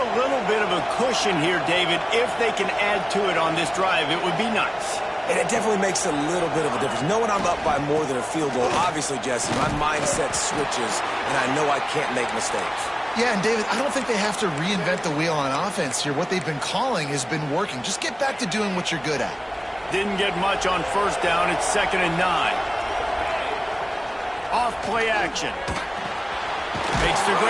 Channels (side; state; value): both; identical; correlation 1.00